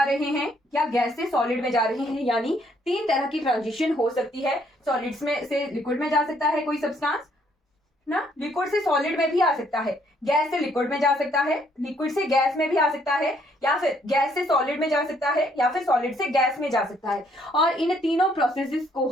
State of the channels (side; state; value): both; normal; correlation 0.67